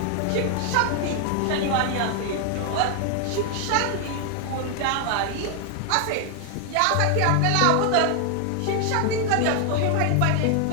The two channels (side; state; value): both; different; correlation 0.00